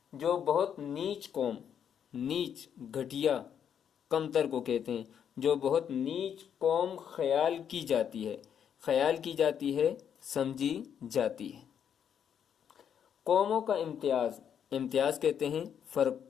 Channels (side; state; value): right; quieter; 8.4 dB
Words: جو بہت نیچ قوم، نیچ گھٹیا کمتر کو کہتے ہیں، جو بہت نیچ قوم خیال کی جاتی ہے، خیال کی جاتی ہے، سمجھی جاتی ہے۔ قوموں کا امتیاز، امتیاز کہتے ہیں فرق